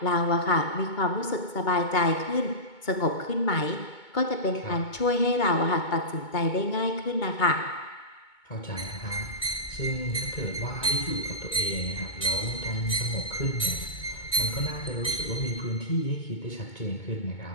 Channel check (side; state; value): right; late; 2.2 ms